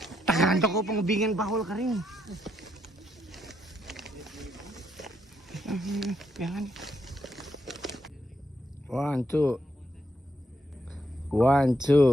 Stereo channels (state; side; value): normal; both; correlation 0.78